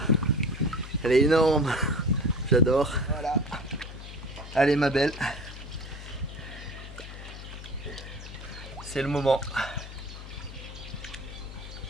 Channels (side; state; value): left; noise; hum, 12 dB below the sound